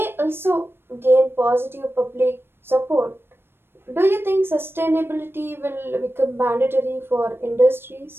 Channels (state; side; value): late; left; 0.11 ms